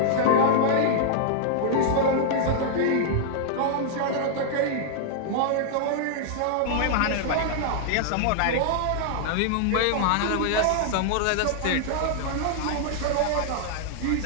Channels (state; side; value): different; both; correlation -0.01